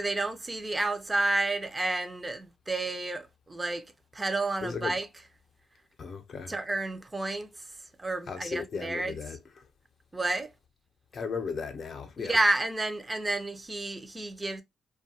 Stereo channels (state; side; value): normal; both; correlation 0.92